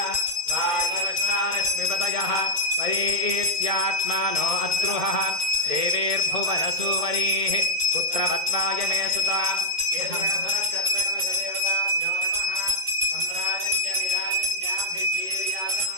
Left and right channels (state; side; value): late; left; 2.1 ms